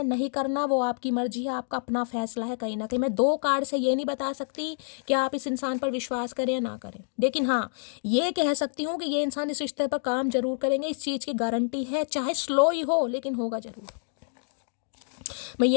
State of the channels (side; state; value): right; silent; digital silence